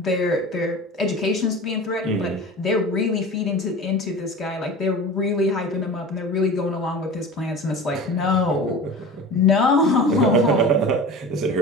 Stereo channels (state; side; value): normal; both; correlation 0.35